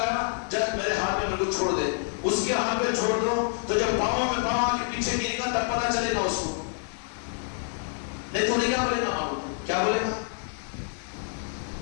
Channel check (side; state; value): right; silent; 60 dB below the other